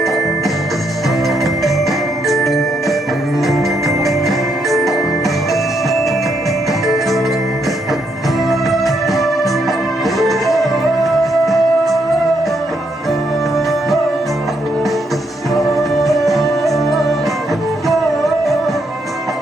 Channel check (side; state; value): both; normal; correlation 0.76